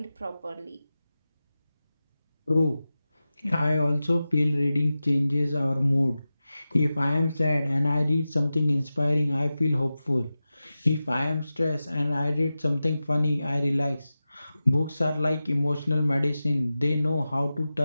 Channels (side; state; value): both; inverted; correlation -0.94